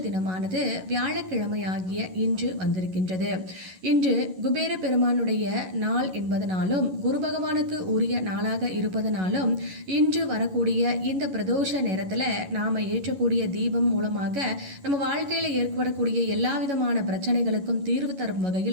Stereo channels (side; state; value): left; late; 11 ms